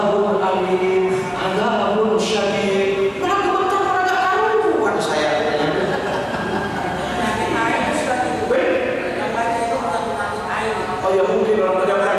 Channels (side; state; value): both; identical; correlation 1.00